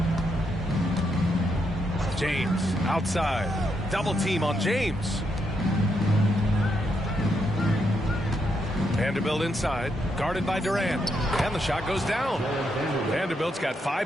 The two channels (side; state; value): both; normal; correlation 0.79